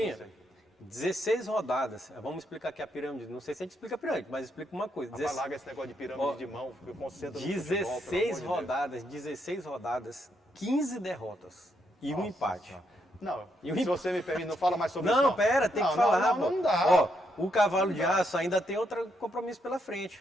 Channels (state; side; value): normal; both; correlation 0.77